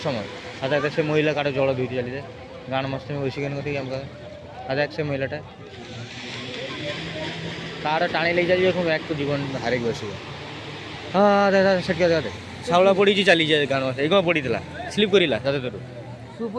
সময়। আধা এক সে মহিলা কারো জଳ ধুইতে ଚାଲିଯାଏ ଗାଁର ମସ୍ତି ବସି କେন କତିକି ଆମ ଆধା এক ସେ ମହିଳାଟା ତାର ଟାଣି ନେଇ ଚାଲିଯିବ ପୁଣି ବ୍ୟାଗ୍ ଜୀବନ ହାରିକି ବସିବ। ହଁ ଦାଦା ସେଠି ଦାଦା ଶାଉଳା ପଡ଼ିଛି ଚାଲିଯାଏ ଗାଁର ଏଇ କ'ଣ ପଡ଼ିଥିଲା ସ୍ଲିପ୍ କରିଲା ଦାଦା ତୋର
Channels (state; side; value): identical; both; correlation 1.00